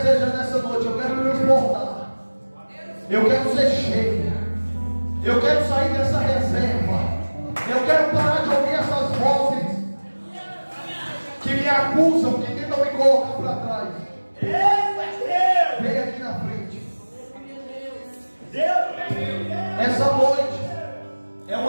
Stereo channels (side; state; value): both; inverted; correlation -1.00